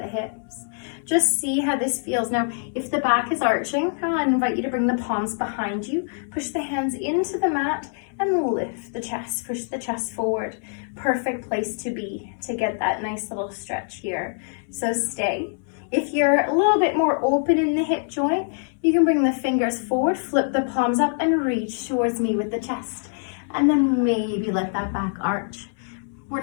hips. Just see how this feels. Now, if the back is arching, I invite you to bring the palms behind you. Push the hands into the mat and lift the chest. Push the chest forward. Perfect place to be to get that nice little stretch here. So stay. If you're a little bit more open in the hip joint, you can bring the fingers forward, flip the palms up, and reach towards me with the chest. And then maybe let that back arch. We're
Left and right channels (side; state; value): right; silent; 62 dB below the other